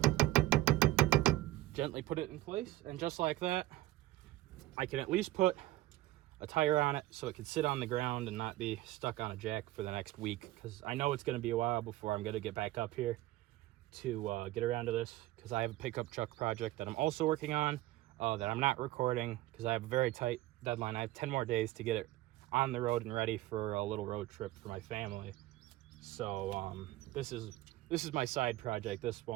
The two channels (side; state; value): left; quieter; 17.0 dB